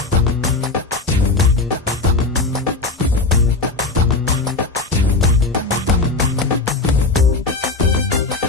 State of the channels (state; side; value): quieter; right; 3.5 dB